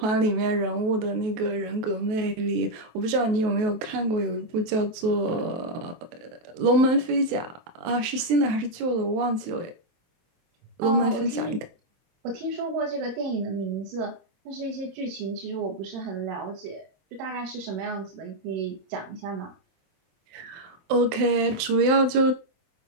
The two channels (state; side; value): late; left; 23 ms